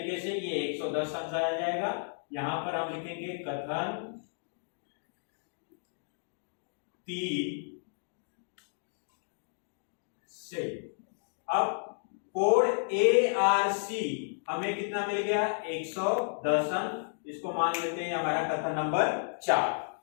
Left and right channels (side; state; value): right; silent; digital silence